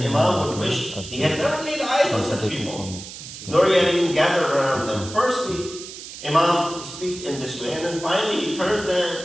would wish he had never laid eyes on such people, nor he had even gathered around them. Firstly, Imam speaks in this way, and then finally he turns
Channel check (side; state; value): right; noise; hiss, 12 dB below the sound